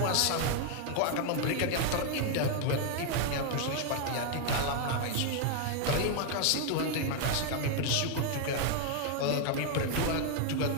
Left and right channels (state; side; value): different; both; correlation 0.00